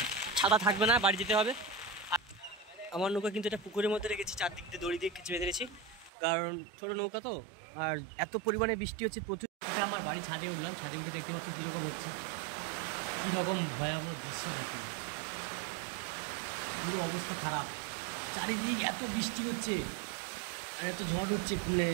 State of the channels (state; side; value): drops out; left; at 6.1 s